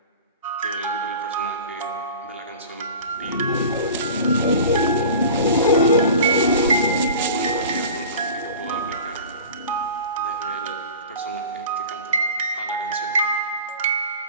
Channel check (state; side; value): inverted; both; correlation -0.38